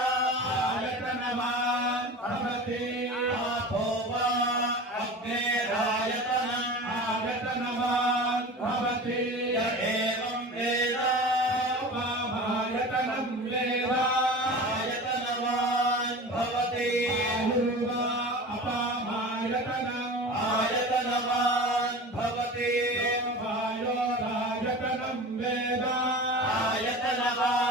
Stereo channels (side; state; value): both; normal; correlation 0.34